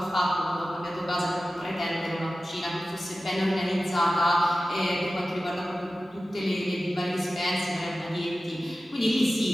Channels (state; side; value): normal; both; correlation 0.95